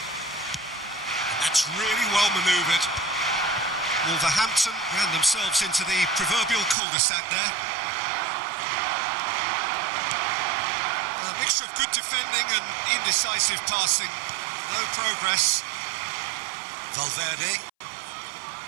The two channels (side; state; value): left; drops out; at 6.8 s